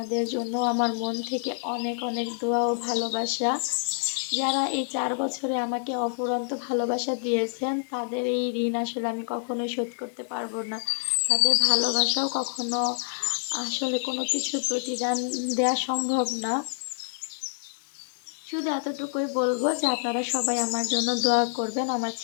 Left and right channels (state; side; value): silent; right; digital silence